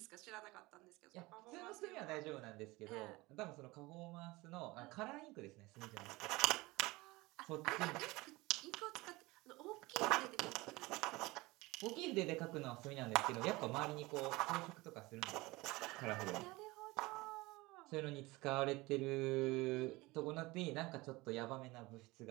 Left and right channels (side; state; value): left; quieter; 21.7 dB